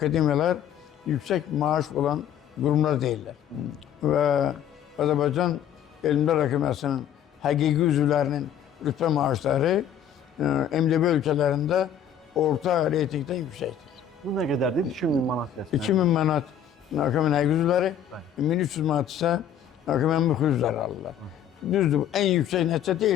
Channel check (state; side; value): quieter; right; 9.1 dB